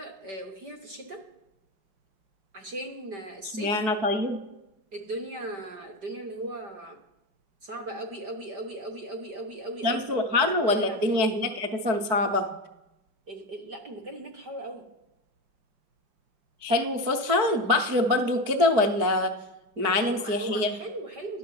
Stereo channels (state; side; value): late; left; 4.6 ms